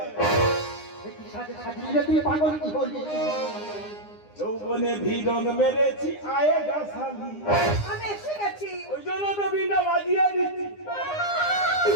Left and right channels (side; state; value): right; late; 9.8 ms